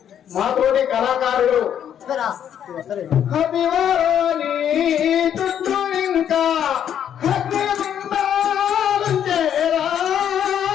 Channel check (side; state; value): right; quieter; 9.4 dB